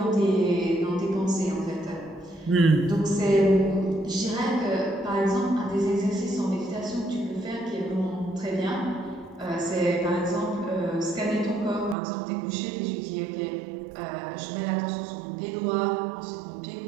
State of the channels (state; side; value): drops out; left; at 12.0 s